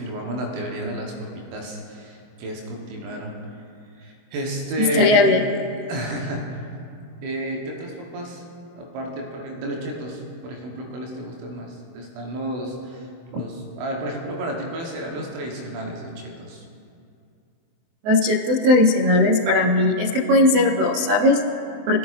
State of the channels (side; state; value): left; late; 24 ms